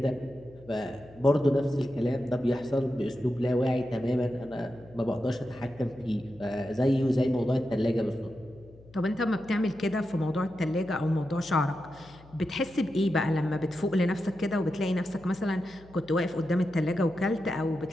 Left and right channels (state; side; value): noise; left; hum, 23 dB below the sound